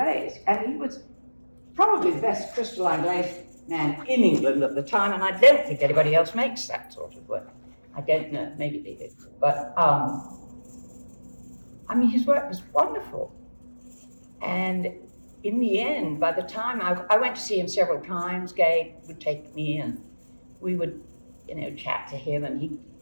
And he was probably the best crystalline glaze man in England at the time, and I don't think anybody else makes that sort of work. I don't know, maybe they did. But, his work was wonderful. And in the end, by the time I went to see him several times, Gabe would take me and we would, chat to him. And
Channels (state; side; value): inverted; both; correlation -1.00